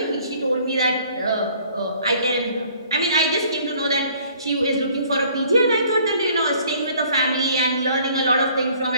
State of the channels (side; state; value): both; inverted; correlation -0.57